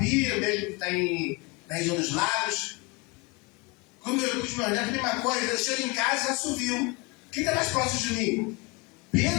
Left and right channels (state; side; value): quieter; right; 26.6 dB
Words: mesmo que está na região dos lagos, com os meus netos, a mesma coisa, eu chego em casa e assovio. Quem está mais próximo de mim?